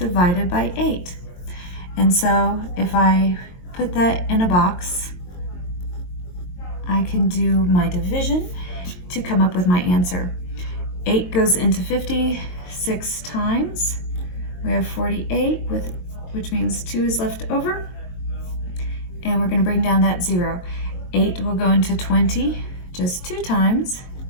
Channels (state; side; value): late; right; 22 ms